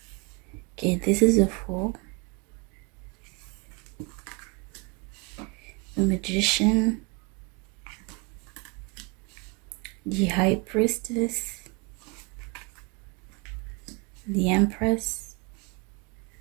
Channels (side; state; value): left; quieter; 28.3 dB